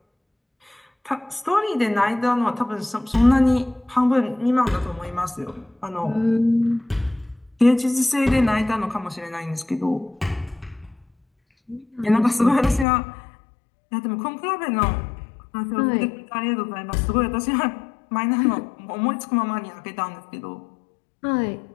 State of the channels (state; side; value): drops out; right; at 12.9 s